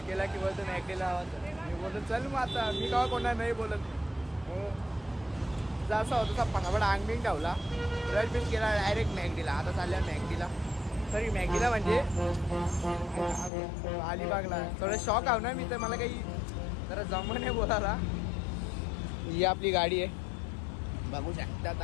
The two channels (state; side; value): drops out; right; at 13.5 s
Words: केला की बोलतो मॅगडीला आवाज. मी बोलतो चल मग आता मी का कोणा नाही बोलत. जसा होता तसा पटापट अंगबिंग ठेवला. ब्रश बिश केला डायरेक्ट मॅगडीला. आता चालल्या मॅगडीला. सॉरी मॅगडीला म्हणजे अलिबागला. थोडं शॉक आहो ना मी तर. मला काही जरा जमं नाही बोलायला. ही आपली गाडी आहे बघू शकता.